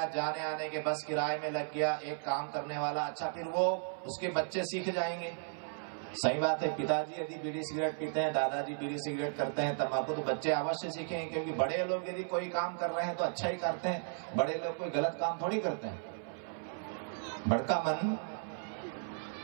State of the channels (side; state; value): left; silent; 54 dB below the other